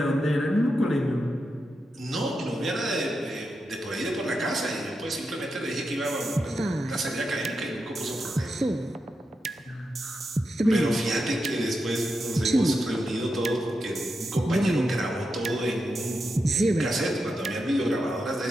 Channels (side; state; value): both; normal; correlation 0.87